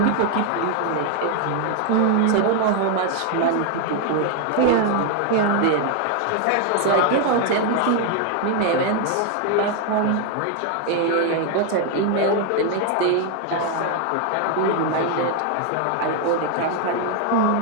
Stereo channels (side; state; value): both; different; correlation 0.00